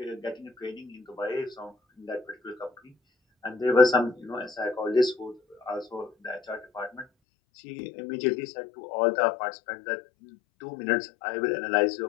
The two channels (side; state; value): right; drops out; at 7.1 s